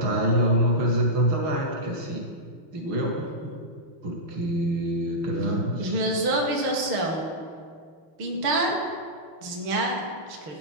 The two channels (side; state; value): left; late; 6.5 ms